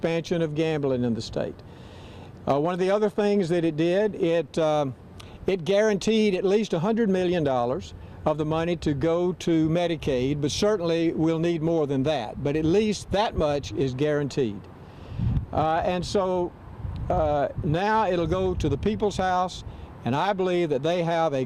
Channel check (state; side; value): identical; both; correlation 1.00